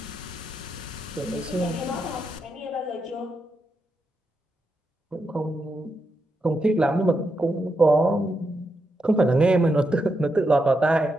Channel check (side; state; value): both; normal; correlation 0.84